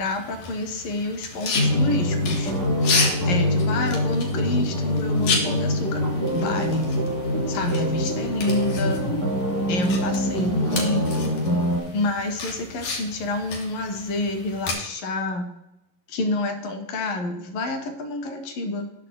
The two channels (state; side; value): late; right; 11 ms